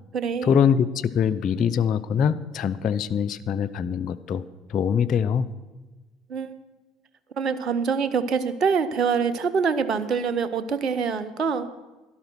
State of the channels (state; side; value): normal; both; correlation 0.61